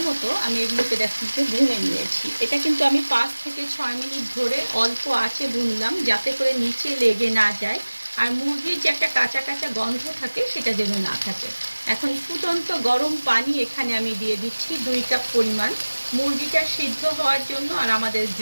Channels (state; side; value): inverted; both; correlation -1.00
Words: মতো আমি এগুলোকে দেখতে ভুনে নিয়েছি। এটা কিন্তু আমি 5 থেকে 6 মিনিট ধরে অল্প আঁচে ভুনলাম, যাতে করে নিচে লেগে না যায় আর মুরগির যে একটা কাঁচা কাঁচা গন্ধ থাকে সেটা যেন না থাকে। এখন ফুটন্ত গরম পানি এখানে আমি দিয়ে দিচ্ছি 2 কাপ পরিমাণ, মুরগিটা সিদ্ধ হওয়ার জন্য আর আমাদের